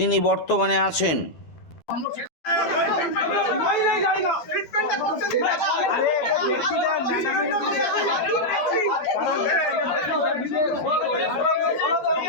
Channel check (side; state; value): right; late; 12 ms